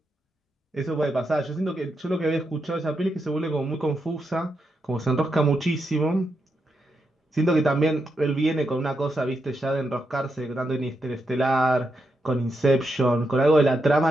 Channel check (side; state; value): both; normal; correlation 0.83